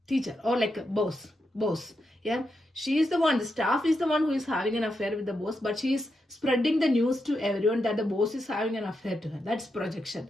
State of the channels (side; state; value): both; normal; correlation 0.85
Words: teacher or like a boss. Yeah, she is the one, the staff is the one who is having an affair with the boss, but she is spreading the news to everyone that the boss is having an affair to her. That's projection.